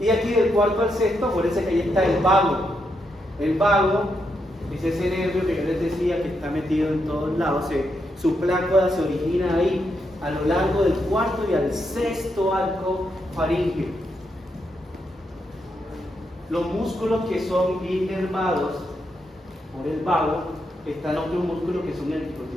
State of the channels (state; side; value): normal; both; correlation 0.81